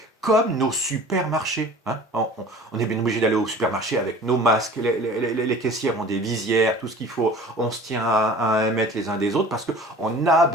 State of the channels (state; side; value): normal; both; correlation 0.43